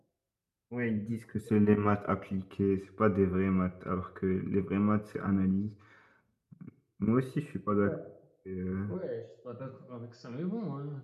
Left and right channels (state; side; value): identical; both; correlation 1.00